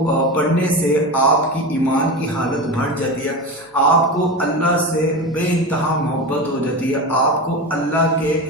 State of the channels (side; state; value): both; normal; correlation 0.24